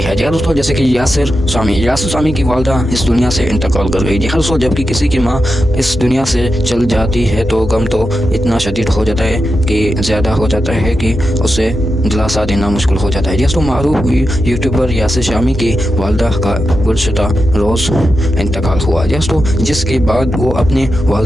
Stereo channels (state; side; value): normal; both; correlation 0.89